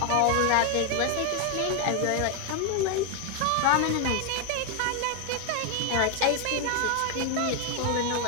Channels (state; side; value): different; both; correlation 0.01